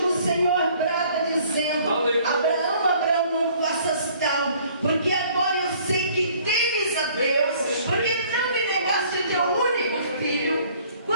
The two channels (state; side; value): inverted; both; correlation -0.57